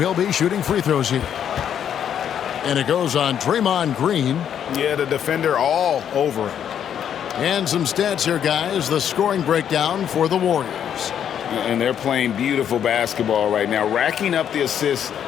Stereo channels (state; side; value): quieter; right; 9.1 dB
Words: be shooting free throws here. And it goes on Draymond Green. Yeah, the defender all over him. And some stats here, guys. The scoring breakdown for the Warriors. And they're playing beautiful basketball right now, racking up the assists